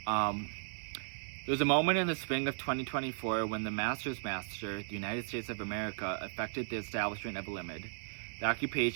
There was a moment in the spring of 2024 when the master's master, the United States of America, effected the establishment of a limit. The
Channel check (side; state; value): left; silent; 54 dB below the other